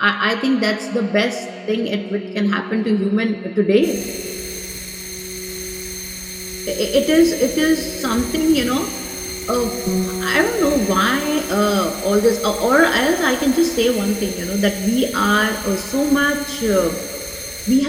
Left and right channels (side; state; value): both; identical; correlation 1.00